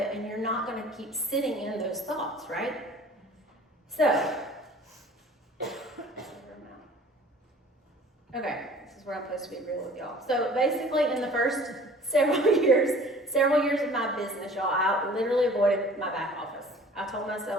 and you're not going to keep sitting in those thoughts, right? So, okay, this is where I'm supposed to be real with y'all. So basically in the first several years of my business, y'all, I literally avoided my back office. I told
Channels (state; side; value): normal; both; correlation 0.48